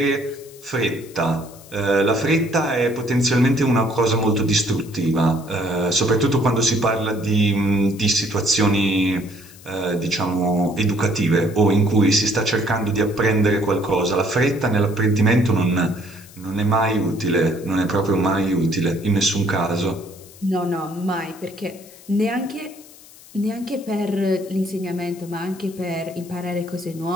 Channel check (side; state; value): left; noise; hiss, 22 dB below the sound